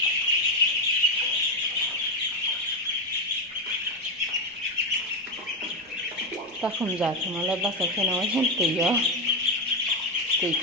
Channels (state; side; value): normal; both; correlation 0.10